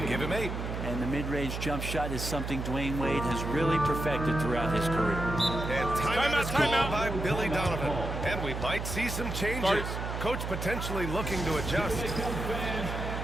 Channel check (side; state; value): right; noise; hum, 4 dB below the sound